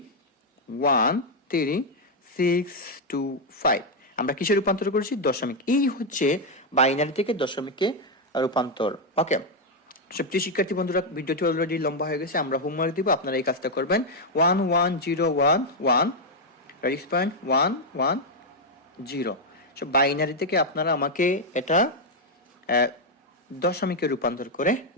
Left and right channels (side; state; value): both; normal; correlation 0.01